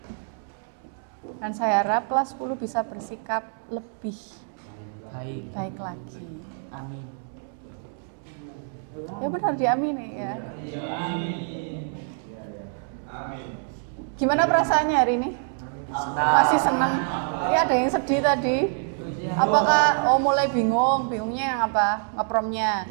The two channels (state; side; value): silent; left; 61 dB below the other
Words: Dan saya harap kelas 10 bisa bersikap lebih baik lagi. Amin. Ya benar, diamini ya. Gimana perasaannya hari ini? Masih senang? Ini ada yang sedih tadi. Apakah mulai bingungnya yang apa? Ngepromnya.